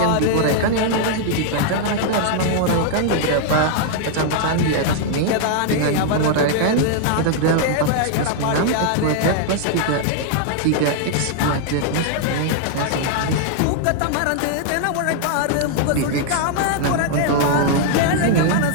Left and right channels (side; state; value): both; different; correlation 0.00